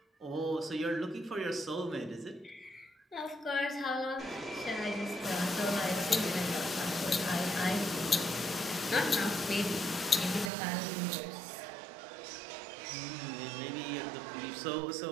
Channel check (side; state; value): left; drops out; at 10.5 s